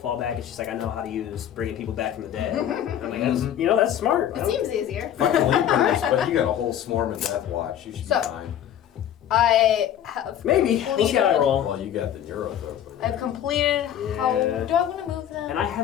the fallback, and she's like, I know how to use bringing people back from the dead. I'm like, that's smart. It seems easier. Fucking leapers, but you got a whole swarm of Death Watch. You should So- be fine. I have. Maybe. We'll see how I roll. Well, you got the Neurothrope. I've completed. How Yeah. do I want to move them? And I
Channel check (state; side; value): quieter; right; 10.5 dB